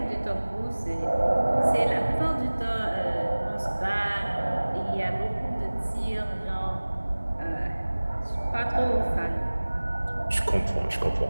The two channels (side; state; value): both; inverted; correlation -1.00